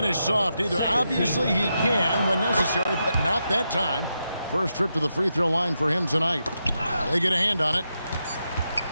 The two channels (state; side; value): inverted; both; correlation -0.85